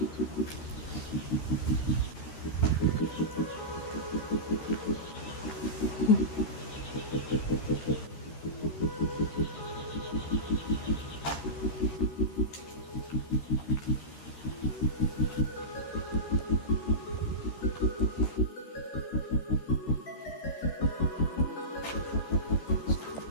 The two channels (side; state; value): right; late; 13 ms